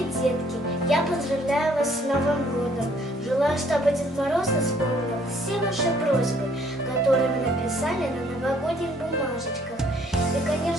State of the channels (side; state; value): both; normal; correlation 0.62